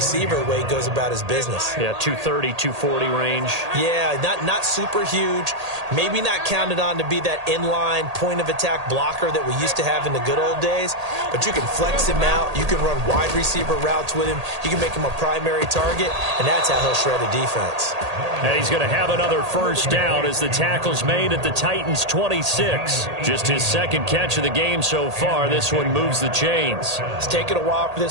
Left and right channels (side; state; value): left; late; 1.8 ms